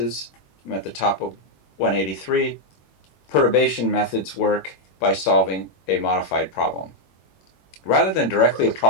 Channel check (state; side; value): late; right; 21 ms